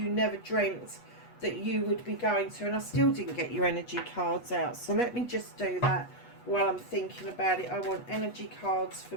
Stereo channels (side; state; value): right; late; 8.2 ms